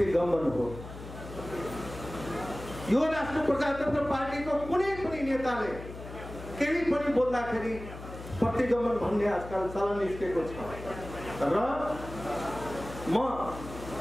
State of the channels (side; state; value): left; noise; hum, 12 dB below the sound